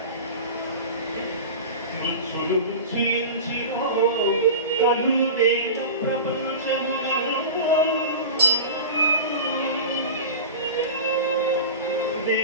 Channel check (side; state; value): both; inverted; correlation -0.31